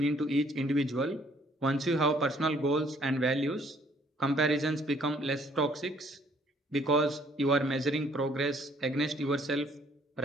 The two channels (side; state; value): both; normal; correlation 0.63